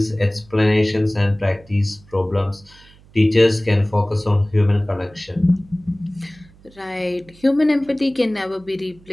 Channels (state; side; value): noise; right; hum, 26 dB below the sound